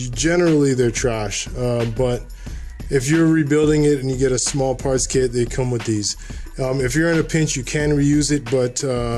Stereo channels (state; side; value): identical; both; correlation 1.00